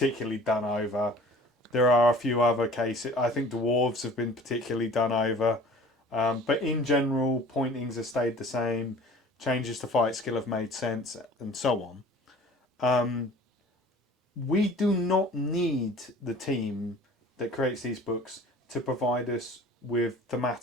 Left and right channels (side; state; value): both; normal; correlation 0.47